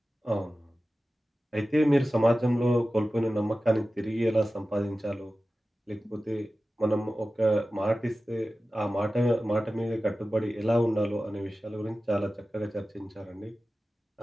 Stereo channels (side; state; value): both; normal; correlation 0.95